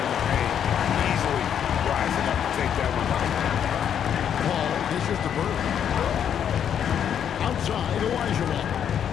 the paint, easily rising up to take that one home. Paul dishes to Bird. Outside, Olajuwon.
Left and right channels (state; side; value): quieter; right; 8.8 dB